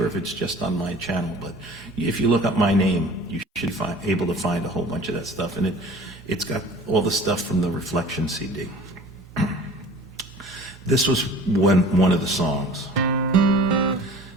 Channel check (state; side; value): normal; both; correlation 0.44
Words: if it's just on my channel, but if you look up my name, you should be able to find a whole bunch of that stuff. And it's got all the stuff from the Reflection CD. This was one of the songs.